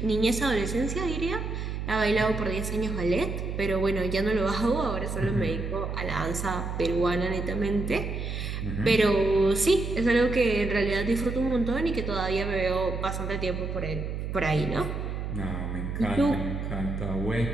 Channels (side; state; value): right; noise; hum, 4 dB below the sound